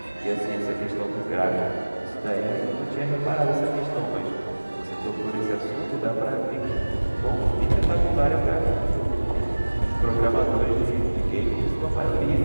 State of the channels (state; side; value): inverted; both; correlation -1.00